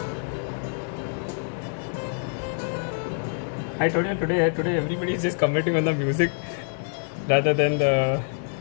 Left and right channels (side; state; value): right; silent; 61 dB below the other